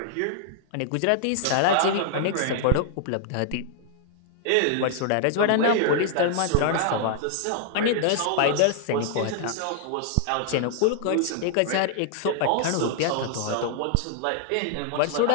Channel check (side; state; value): both; different; correlation 0.00